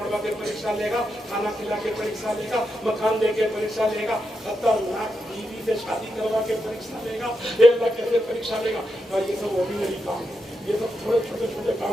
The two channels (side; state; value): both; normal; correlation 0.86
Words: के परीक्षा लेगा, खाना खिला के परीक्षा लेगा, मकान दे के परीक्षा लेगा, खतरनाक बीवी से शादी करवा के परीक्षा लेगा। ये अल्लाह कैसे परीक्षा लेगा? और ये सब ऑर्डिनरी काम है, ये सब थोड़े छोटे छोटे